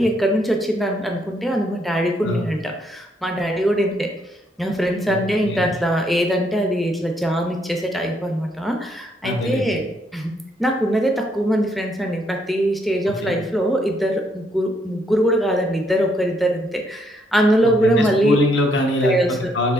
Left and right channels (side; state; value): both; normal; correlation 0.72